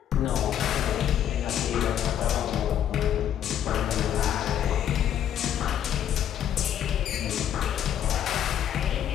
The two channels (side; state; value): right; quieter; 10.2 dB